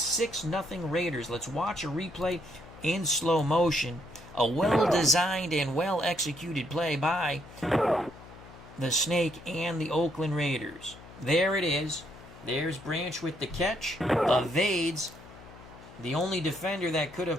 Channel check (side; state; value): left; noise; hum, 19 dB below the sound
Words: Raiders. Let's watch a replay in slow motion. A well-designed and well-executed play by the Snake and the Oakland Raiders. There it is. There's Branch with the catch. Evades the only defender that could